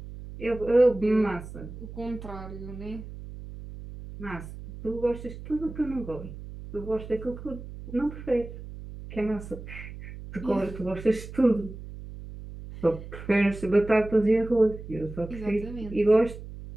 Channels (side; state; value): right; noise; hum, 12 dB below the sound